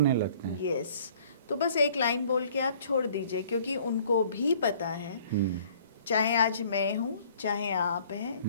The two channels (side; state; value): both; inverted; correlation -0.56